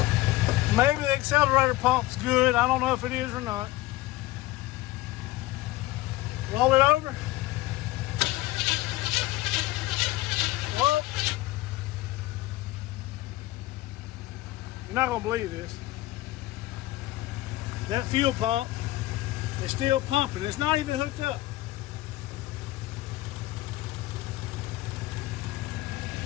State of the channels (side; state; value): right; quieter; 17.8 dB